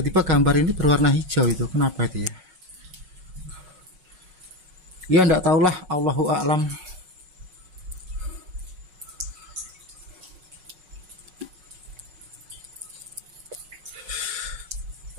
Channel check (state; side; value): late; left; 5.4 ms